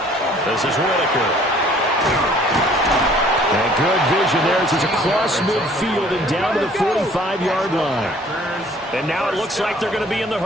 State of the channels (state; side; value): normal; both; correlation 0.56